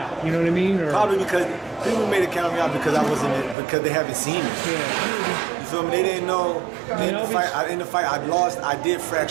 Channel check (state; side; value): drops out; left; at 3.6 s